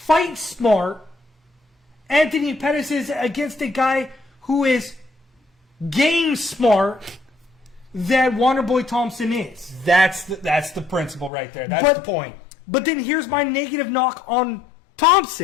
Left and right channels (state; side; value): drops out; right; at 11.3 s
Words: smart Anthony Pettis is against a guy who is game smart that Wonderboy Thompson is. That's the principle right there. That's the point. But then here's my negative knock on